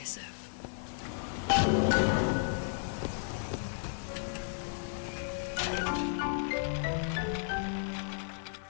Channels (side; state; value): right; silent; digital silence